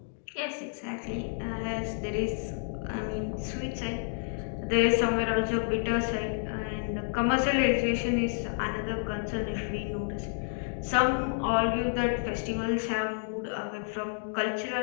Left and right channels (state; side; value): silent; right; digital silence